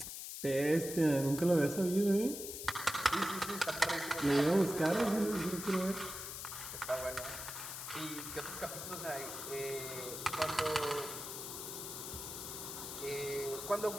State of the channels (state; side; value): noise; left; hiss, 7 dB below the sound